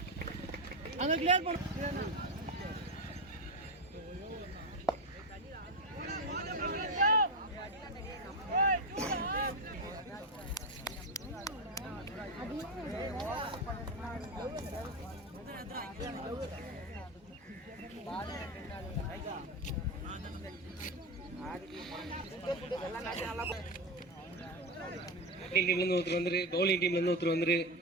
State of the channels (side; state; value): both; normal; correlation 0.15